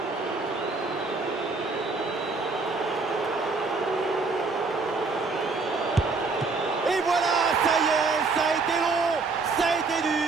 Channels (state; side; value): quieter; left; 4.0 dB